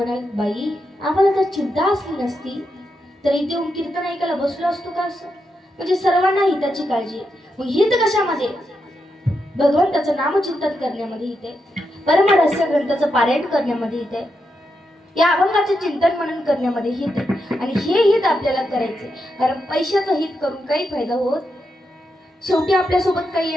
बाई आम्हाला जर चिंता असली नसती तर इथे येऊन कीर्तन ऐकायला बसलो असतो का असं. म्हणजे सर्वांना हिताची काळजी. मग हित कशामध्ये, भगवंताचं नामचिंतन करण्यामध्ये हित आहे, परमरहस्य ग्रंथाचं पारायण करण्यामध्ये हित आहे, या अभंगाचे चिंतन मनन करण्यामध्ये हित आहे. आणि हे हित आपल्याला करायचे, कारण पैशाचं हित करून काही फायदा होत. शेवटी आपल्यासोबत काही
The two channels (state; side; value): normal; both; correlation 0.84